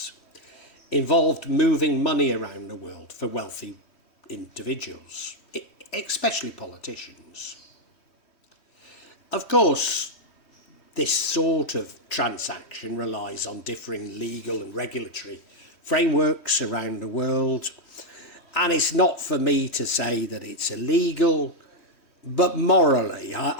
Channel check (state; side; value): late; right; 3.1 ms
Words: involved moving money around the world for wealthy individuals, especially politicians. Of course, this sort of transaction relies on differing legal and regulatory frameworks around the world, and it's not for me to say that it's illegal, but morally